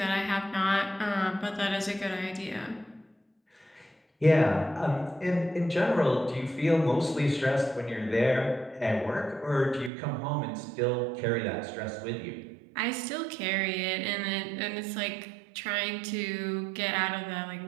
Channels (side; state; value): left; drops out; at 9.9 s